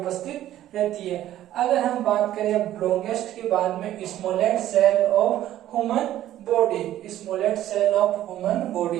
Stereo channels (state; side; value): quieter; left; 13.0 dB